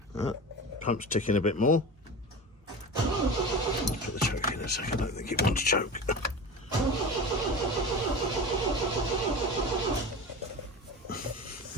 Pump's ticking a bit more. Let's put the choke in a second. I don't think it wants choke.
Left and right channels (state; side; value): normal; both; correlation 0.30